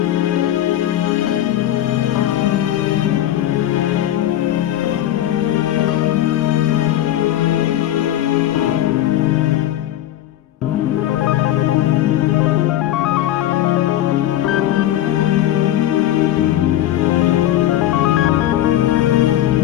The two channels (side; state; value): right; quieter; 12.8 dB